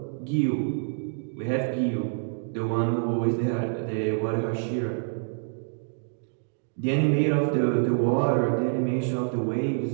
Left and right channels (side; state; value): left; silent; digital silence